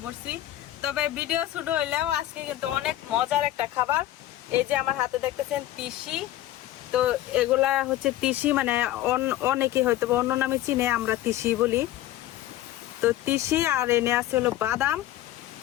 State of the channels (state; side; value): quieter; right; 14.1 dB